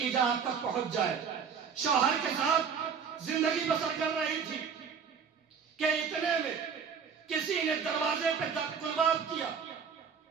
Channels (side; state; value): left; quieter; 6.5 dB